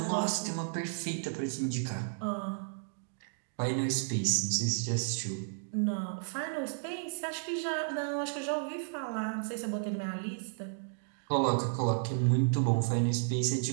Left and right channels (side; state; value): left; silent; digital silence